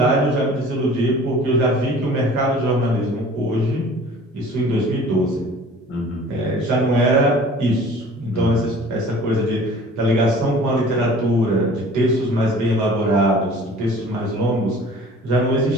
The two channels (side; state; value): both; normal; correlation 0.47